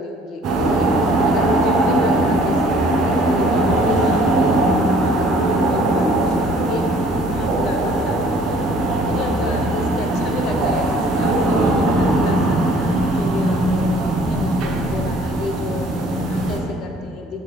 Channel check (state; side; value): normal; both; correlation 0.55